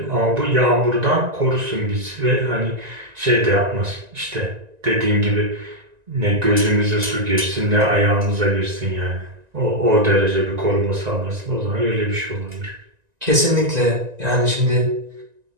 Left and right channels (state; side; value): late; left; 1.9 ms